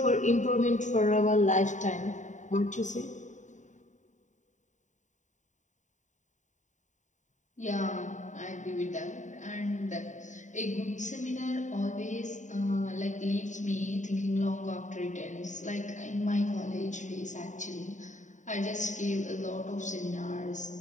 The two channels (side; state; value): right; late; 0.36 ms